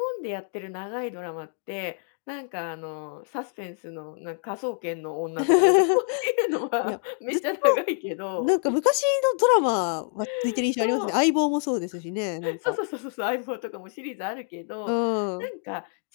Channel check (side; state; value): right; silent; 56 dB below the other